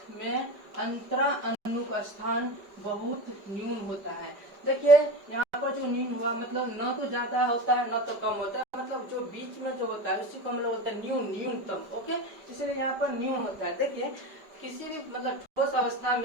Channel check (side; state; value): left; late; 5.1 ms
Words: में अंतरा अनुक स्थान बहुत न्यून होता है। देखिए यहाँ पर जो न्यून हुआ मतलब न तो ज्यादा होता है न तो कम होता है, मतलब जो बीच में जो होता है उसी को हम लोग बोलते हैं न्यूनतम। ओके, इसलिए यहाँ पर न्यून होता है। देखिए किसी भी मतलब ठोस अवस्था